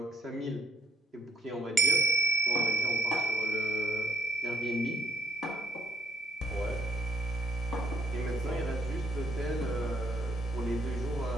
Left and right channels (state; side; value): normal; both; correlation 0.68